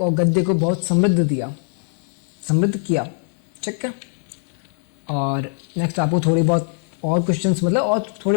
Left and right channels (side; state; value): right; silent; 65 dB below the other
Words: और गद्य को बहुत समृद्ध किया। ठीक है। और नेक्स्ट आपको थोड़ी बहुत और क्वेश्चंस मतलब और